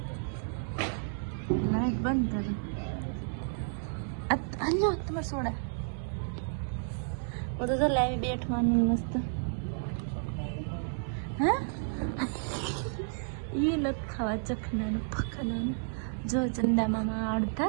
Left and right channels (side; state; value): left; silent; digital silence